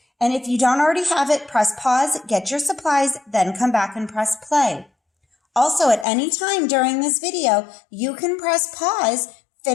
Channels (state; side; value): drops out; right; at 6.1 s